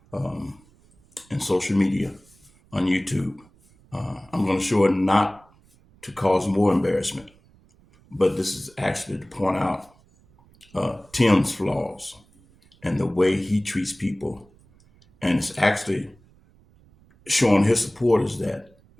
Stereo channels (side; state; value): right; noise; rumble, 30 dB below the sound